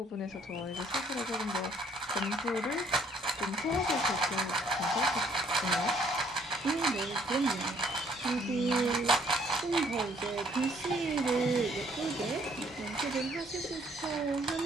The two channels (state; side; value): normal; both; correlation 0.63